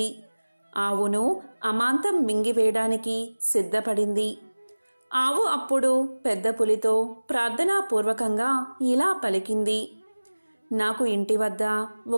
ఆవును అమాంతం మింగివేయడానికి సిద్ధపడింది. ఆవు అప్పుడు పెద్ద పులితో ప్రార్థనాపూర్వకంగా ఇలా పలికింది: నాకు ఇంటి వద్ద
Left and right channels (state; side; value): inverted; both; correlation -1.00